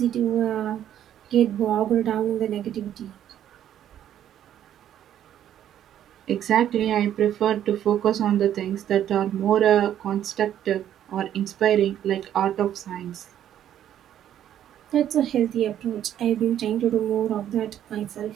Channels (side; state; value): left; quieter; 10.8 dB